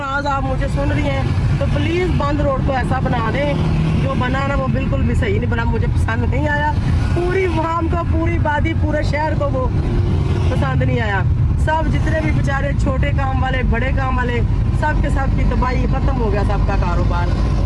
आप मुझे सुन रही हैं तो प्लीज़ बंद रोड को ऐसा बना दें, जो बना ना वो बिल्कुल भी सही नहीं बना, मुझे पसंद नहीं आया। पूरी वाम को, पूरी बादी, पूरे शहर को वो पसंद नहीं आया। सब जितने भी बेचारे छोटे काम वाले, बड़े काम वाले, सब के सब की तबाही, ख़त्म हो गया सबका कारोबार।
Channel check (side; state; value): both; identical; correlation 1.00